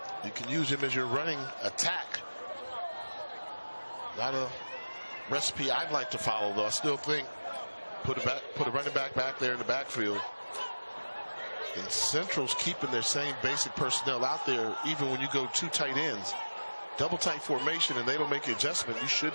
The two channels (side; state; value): both; inverted; correlation -1.00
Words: you can use him as your running attack. Not a recipe I'd like to follow, though. I still think put a running back there in the backfield. And Central's keeping their same basic personnel out there, even when you go 2 tight ends. Double tight formation, and they don't make the adjustment. You